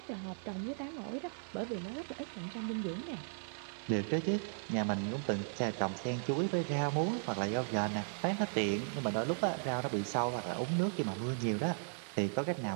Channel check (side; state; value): left; silent; 53 dB below the other